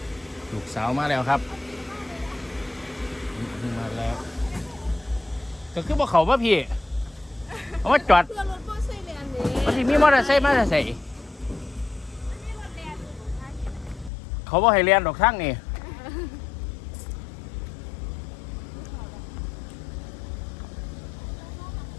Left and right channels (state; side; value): drops out; right; at 14.1 s